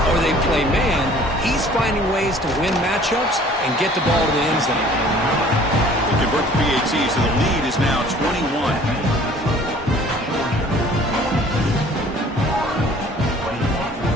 or they play man, he's finding ways to win matchups and get the ball to the end zone. They convert the PAT, so the lead is now 21.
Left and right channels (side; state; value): both; normal; correlation 0.52